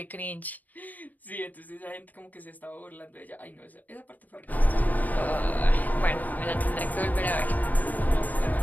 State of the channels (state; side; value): late; right; 0.083 ms